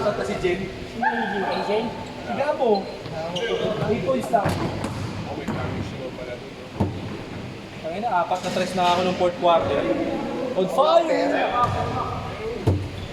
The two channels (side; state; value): both; identical; correlation 1.00